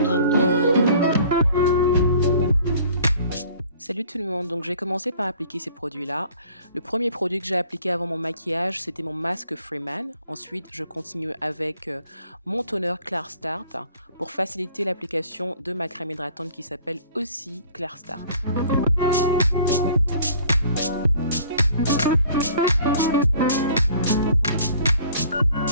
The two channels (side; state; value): both; inverted; correlation -0.53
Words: tout le monde, donc je vais commencer par appliquer ces produits-là. Le premier produit que j'ai appliqué avant mon maquillage, c'était mon masque Freeman. Ensuite, je continue avec mon toner Clear Start pour faciliter l'application de ma crème hydratante qui s'appelle aussi Clear Start.